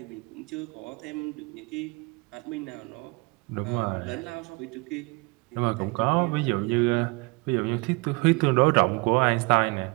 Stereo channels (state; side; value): quieter; left; 28.4 dB